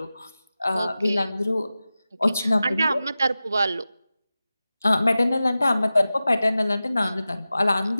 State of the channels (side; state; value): both; inverted; correlation -0.95